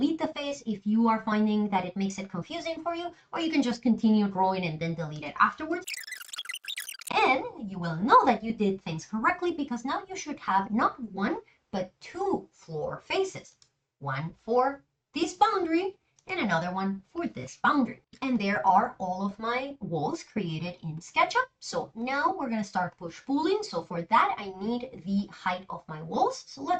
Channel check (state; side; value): identical; both; correlation 1.00